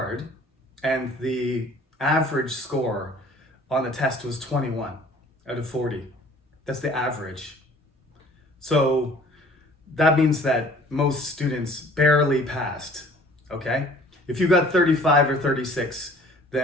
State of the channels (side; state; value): both; normal; correlation 0.52